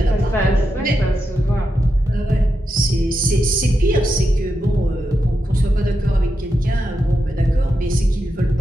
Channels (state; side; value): normal; both; correlation 0.87